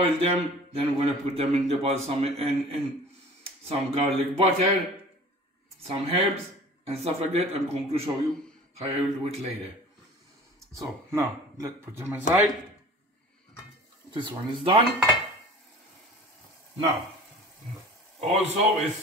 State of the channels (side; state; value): both; normal; correlation 0.44